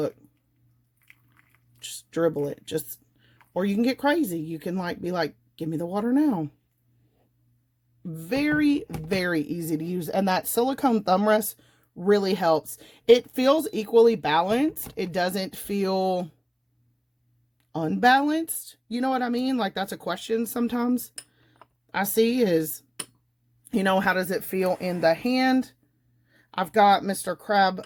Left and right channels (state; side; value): identical; both; correlation 1.00